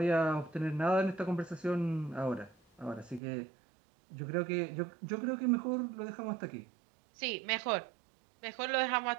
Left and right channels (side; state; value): left; drops out; at 3.2 s